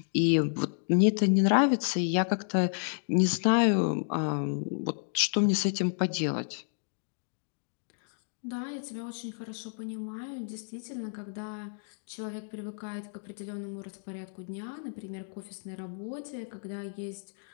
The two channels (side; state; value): right; silent; digital silence